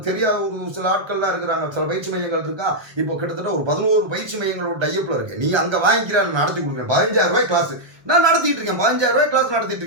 தெரியாத ஒரு சில ஆட்கள்லாம் இருக்கிறாங்க, சில பயிற்சி மையங்கள் இருக்கா. இப்போ கிட்டத்தட்ட ஒரு 11 பயிற்சி மையங்களோட டைப்பில் இருக்கேன். நீ அங்கே வாங்கிக்கிற நடத்தி கொடுக்குறேன். 15,000 ரூபாய் கிளாஸ் நான் நடத்திட்டு இருக்கேன், 15,000 ரூபாய் கிளாஸ் நடத்திட்டு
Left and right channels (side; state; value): left; late; 1.2 ms